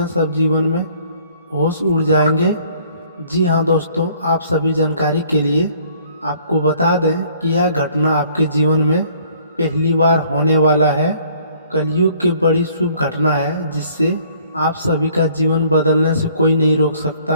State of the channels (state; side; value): inverted; both; correlation -0.59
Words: सब जीवन में होश उड़ जाएंगे। जी हाँ दोस्तों, आप सभी जानकारी के लिए आपको बता दें कि यह घटना आपके जीवन में पहली बार होने वाला है। कलयुग की बड़ी शुभ घटना है जिससे आप सभी का जीवन बदलने से कोई नहीं रोक सकता